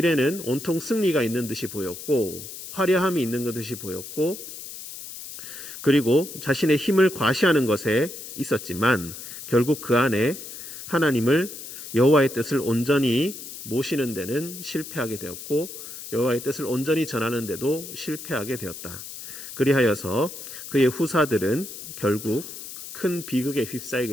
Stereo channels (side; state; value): left; noise; hiss, 11 dB below the sound